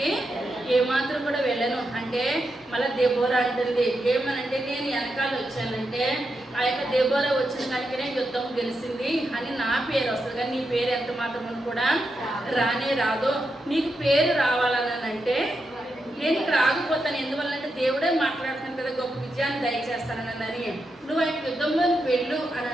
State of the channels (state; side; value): normal; both; correlation 0.86